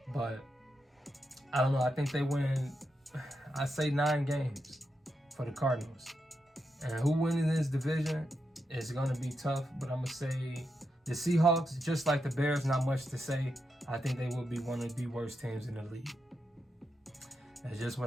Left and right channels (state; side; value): normal; both; correlation 0.85